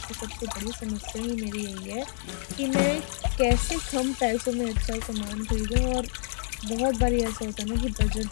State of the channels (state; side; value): silent; right; digital silence